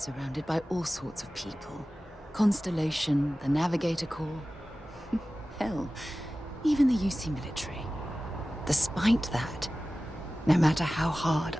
by all sorts of people. Constellation, the Navigator Corps. Hell, even the UC military. Despite that, no matter how hard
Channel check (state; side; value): normal; both; correlation 0.96